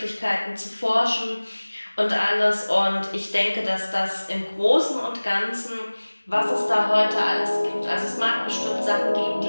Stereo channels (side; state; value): both; inverted; correlation -1.00